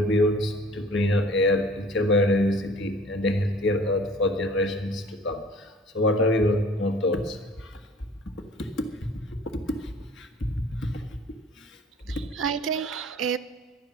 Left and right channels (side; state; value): both; normal; correlation 0.49